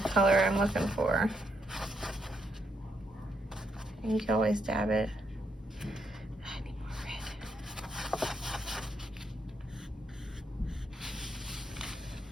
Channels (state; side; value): normal; both; correlation 0.78